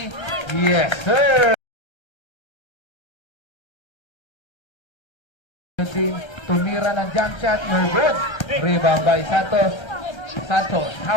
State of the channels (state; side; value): late; right; 1.3 ms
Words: Yes, sir! Tumira ng jump shot, no good. Rebound by Santos. Santos,